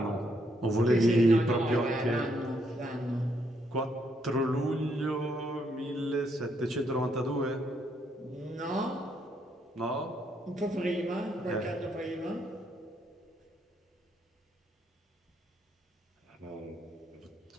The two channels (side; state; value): both; normal; correlation 0.74